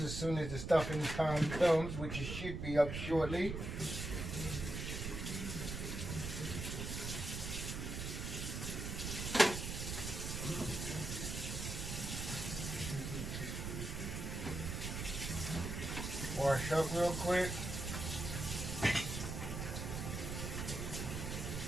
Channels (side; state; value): right; noise; rumble, 4 dB below the sound